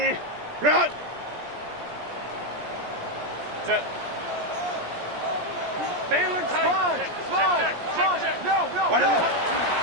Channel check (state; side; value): late; left; 17 ms